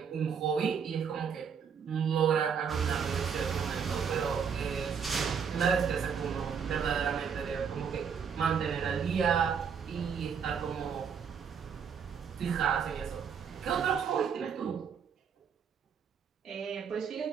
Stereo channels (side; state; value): left; quieter; 6.9 dB